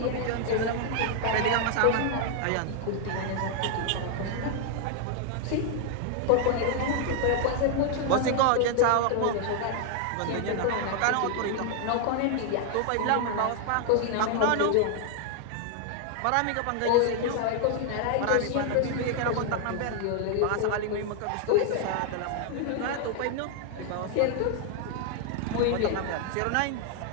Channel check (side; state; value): both; different; correlation 0.00